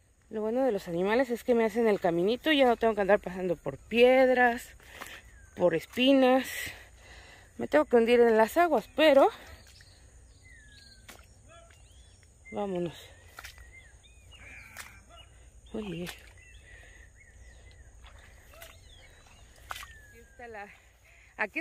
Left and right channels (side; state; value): both; identical; correlation 1.00